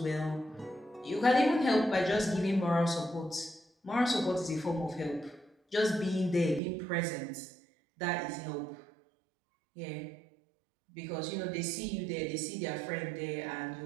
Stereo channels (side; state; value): left; drops out; at 6.6 s